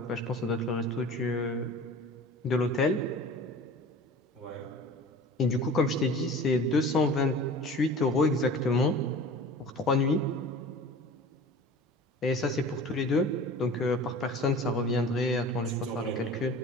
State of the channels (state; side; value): normal; both; correlation 0.40